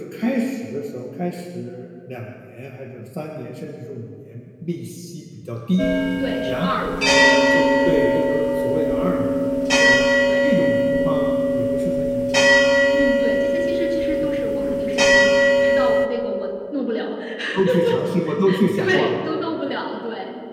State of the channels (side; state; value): both; identical; correlation 1.00